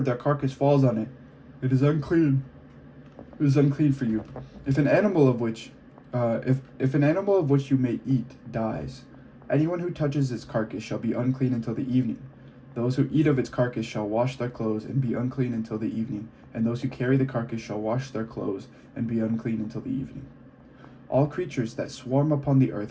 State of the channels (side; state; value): both; identical; correlation 1.00